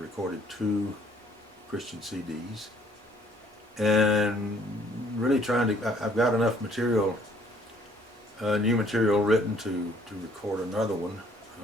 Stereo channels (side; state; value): both; normal; correlation 0.61